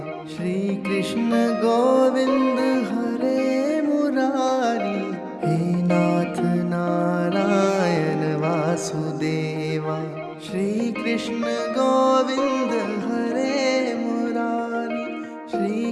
श्री कृष्ण गोविंद हरे मुरारी हे नाथ नारायण वासुदेवा श्री कृष्ण गोविंद हरे मुरारी श्री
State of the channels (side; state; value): both; identical; correlation 1.00